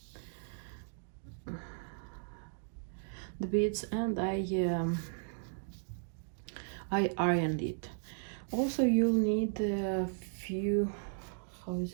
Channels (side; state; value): left; silent; digital silence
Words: beads, and I ironed it. Also, you'll need a few, how is